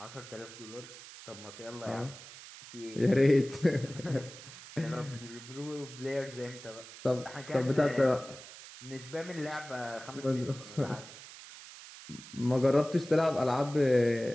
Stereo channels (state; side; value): noise; right; hiss, 16 dB below the sound